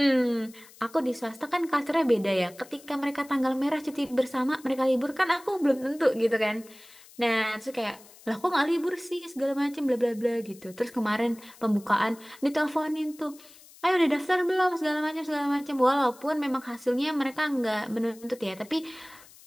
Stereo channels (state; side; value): noise; left; hiss, 23 dB below the sound